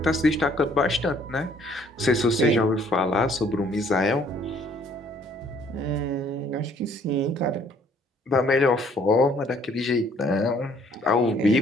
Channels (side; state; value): both; normal; correlation 0.61